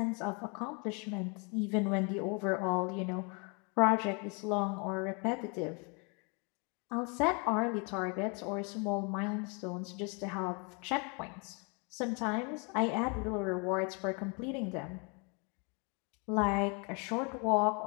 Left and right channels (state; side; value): quieter; right; 33.8 dB